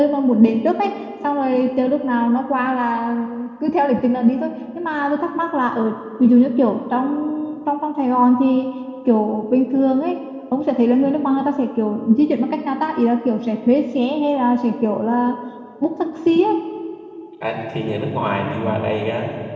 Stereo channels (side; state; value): both; identical; correlation 1.00